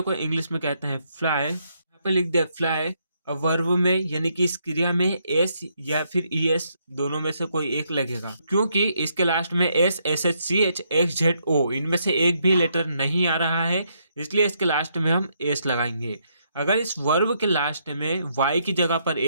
को इंग्लिश में कहते हैं फ्लाई। यहाँ पे लिख दिया फ्लाई। अब वर्ब में यानी कि इस क्रिया में एस या फिर ई एस दोनों में से कोई एक लगेगा, क्योंकि इसके लास्ट में S, S H C H, X Z O, इनमें से एक भी लेटर नहीं आ रहा है, इसलिए इसके लास्ट में हम एस लगाएंगे। अगर इस वर्ब के लास्ट में वाई की जगह पर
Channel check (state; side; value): inverted; both; correlation -0.75